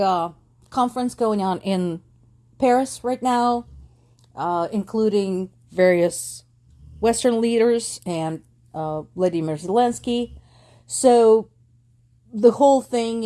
conference going on in Paris right now, including various Western leaders and Vladimir Zelensky. So the whole thing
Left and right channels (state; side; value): identical; both; correlation 1.00